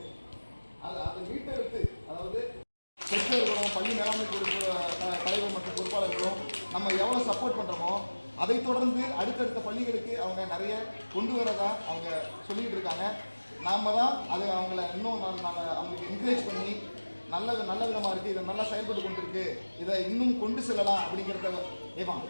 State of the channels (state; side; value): inverted; both; correlation -1.00